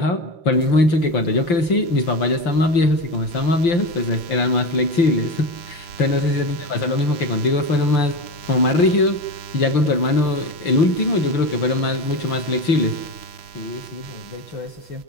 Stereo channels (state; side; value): late; right; 5.8 ms